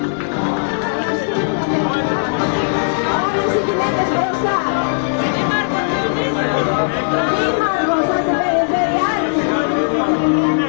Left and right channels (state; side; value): silent; right; digital silence